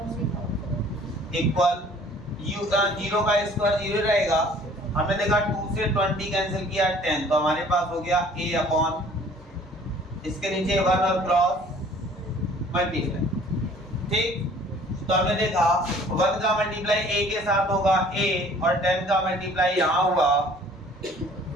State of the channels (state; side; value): normal; both; correlation 0.53